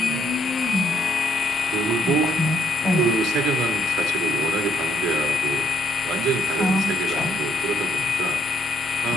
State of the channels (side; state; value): both; normal; correlation 0.72